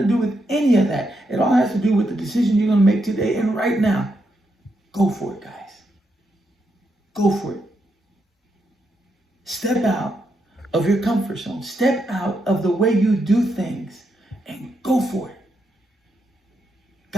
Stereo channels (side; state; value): both; normal; correlation 0.81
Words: to do with any of that. It all has to do with the decision you're going to make today and right now. Go for it, guys. Go for it. Step out of your comfort zone. Step out of the way you do things and go for it.